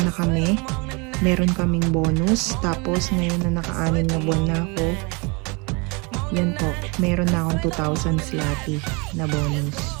na kami, meron kaming bonus. Tapos ngayon na naka-anim na buwan na ako, yan po, meron na akong 2,000 zloty na bonus.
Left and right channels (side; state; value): left; quieter; 29.6 dB